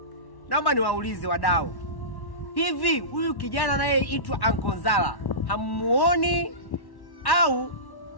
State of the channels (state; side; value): late; right; 1.1 ms